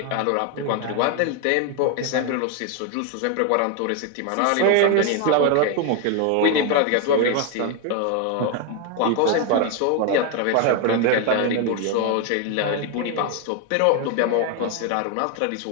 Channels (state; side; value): different; both; correlation 0.01